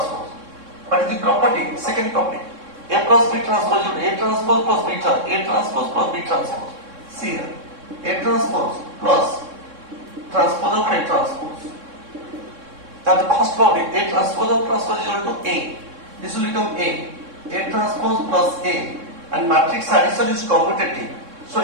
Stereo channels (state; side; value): late; left; 3.6 ms